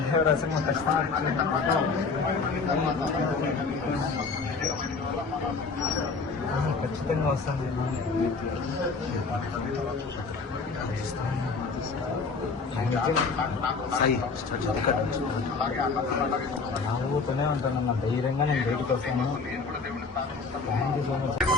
దేవరాశం ఖచ్చితంగా వస్తుంది. నవ్వుతూనే ఉంటానన్న, ధైర్యంగా నేను బయటకు వస్తాను. Thank you so much.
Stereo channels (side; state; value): right; quieter; 4.5 dB